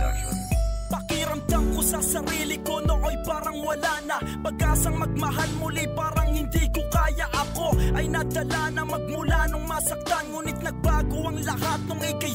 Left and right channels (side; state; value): both; identical; correlation 1.00